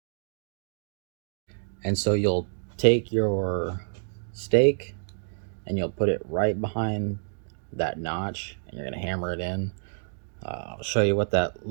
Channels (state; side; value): silent; left; digital silence